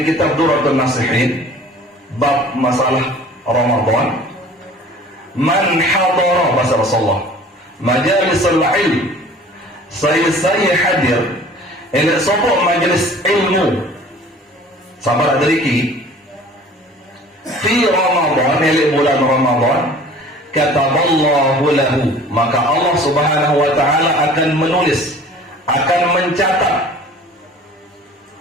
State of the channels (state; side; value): normal; both; correlation 0.47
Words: kitab Durratun Nasihin bab masalah Ramadan. Man hadara, bahasa Rasulullah, majalisul ilm, saya hadir elek sopok majelis ilmu sabar adariki fi Ramadan, elek bulan Ramadan, kataballahu lahu, maka Allah Subhanahu wa taala akan menulis, akan mencatat